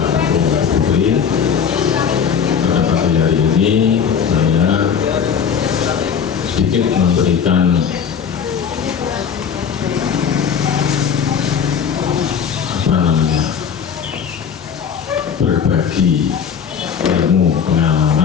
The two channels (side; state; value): right; quieter; 7.2 dB